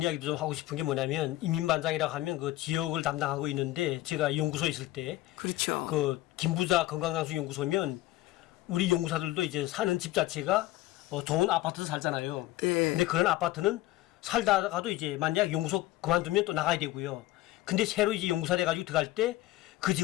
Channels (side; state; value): right; quieter; 16.7 dB